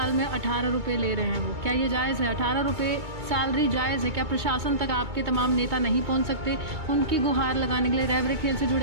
में 18 रुपये ले रहे हैं वो। क्या ये जायज़ है? 18 रुपये सैलरी जायज़ है? क्या प्रशासन तक आपके तमाम नेता नहीं पहुंच सकते? उनकी गुहार लगाने के लिए रैबरे खेल से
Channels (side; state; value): left; late; 2.2 ms